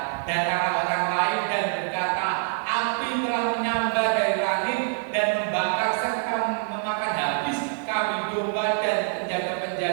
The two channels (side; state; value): left; silent; 61 dB below the other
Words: datanglah orang lain dan berkata, api telah menyambar dari langit dan membakar serta memakan habis kambing domba dan